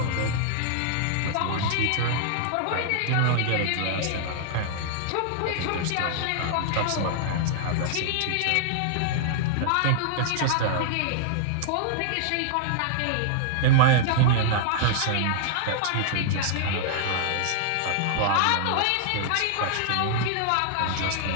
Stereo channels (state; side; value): different; both; correlation -0.01